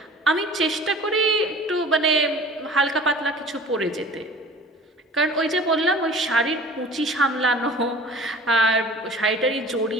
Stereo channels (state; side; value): normal; both; correlation 0.44